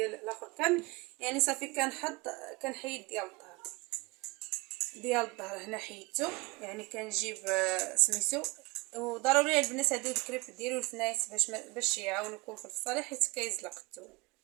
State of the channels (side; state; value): left; quieter; 25.2 dB